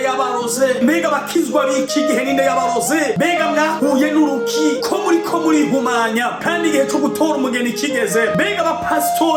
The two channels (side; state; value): both; identical; correlation 1.00